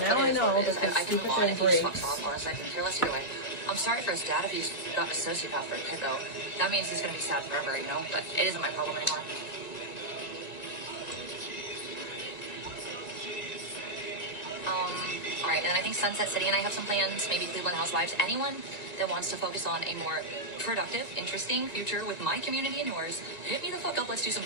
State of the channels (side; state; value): right; late; 2.3 ms